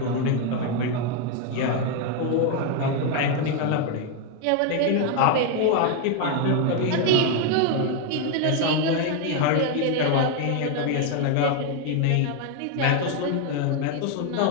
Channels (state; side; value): different; both; correlation 0.01